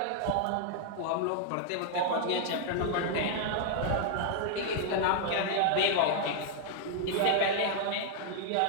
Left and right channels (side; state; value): both; different; correlation -0.01